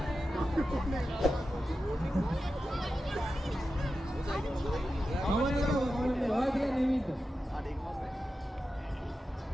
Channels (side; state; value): both; normal; correlation 0.91